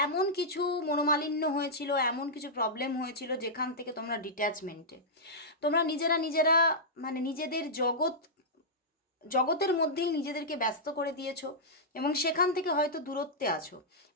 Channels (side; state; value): both; normal; correlation -0.11